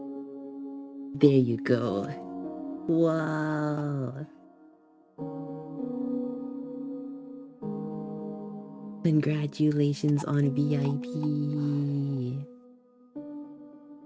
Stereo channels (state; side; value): identical; both; correlation 1.00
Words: There you go. Wow! Congratulations on VIP.